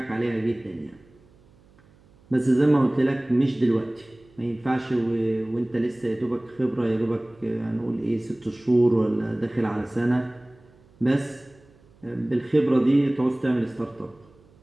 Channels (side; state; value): right; noise; hum, 29 dB below the sound